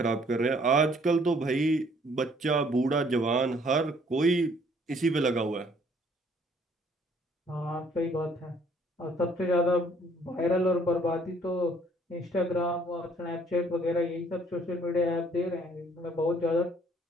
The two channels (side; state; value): both; normal; correlation 0.61